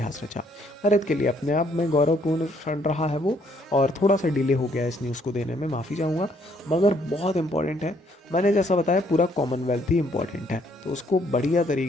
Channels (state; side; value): normal; both; correlation 0.67